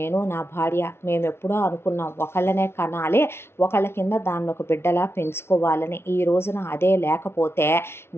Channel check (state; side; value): late; right; 0.12 ms